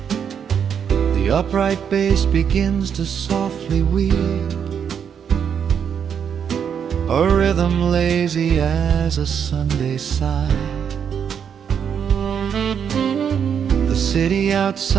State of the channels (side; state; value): left; quieter; 7.7 dB